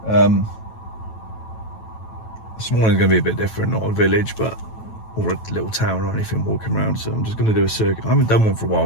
This morning's going to be a bit different, not a village, but or a little town or anything walking around. So I'm just going to do a circuit. I haven't done one for a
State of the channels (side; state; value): right; late; 9.1 ms